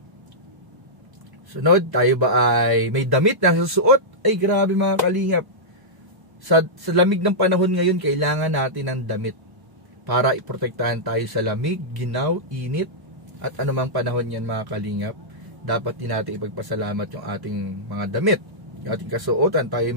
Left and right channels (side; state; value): left; late; 1.1 ms